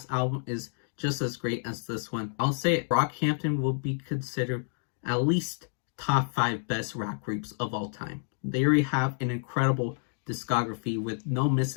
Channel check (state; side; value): silent; right; digital silence